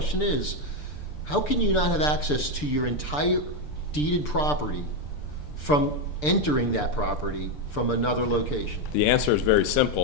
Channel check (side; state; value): right; late; 6.8 ms